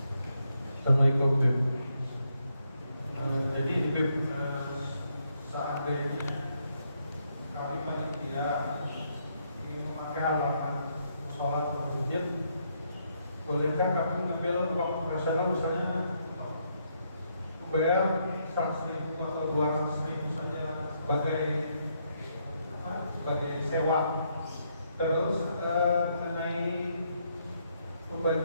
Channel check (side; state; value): both; inverted; correlation -0.75